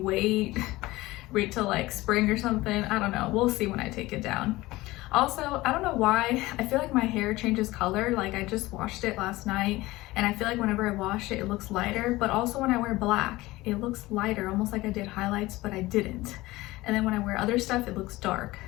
wait till like spring or something? I don't know. We'll see when I take it down. Also, I don't know why, I feel like my hair changes color. Like I just washed it last night and I feel like whenever I wash it, it looks lighter. But also when I wear black, it looks lighter, almost like I did highlights, but I didn't. And then when I wear other stuff, it looks dark.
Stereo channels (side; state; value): right; quieter; 19.1 dB